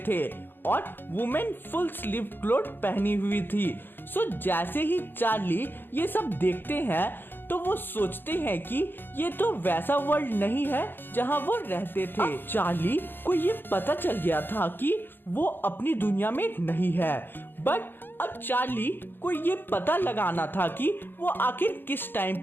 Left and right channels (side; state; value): right; late; 0.098 ms